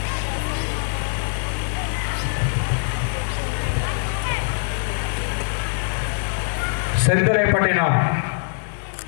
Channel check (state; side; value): silent; right; digital silence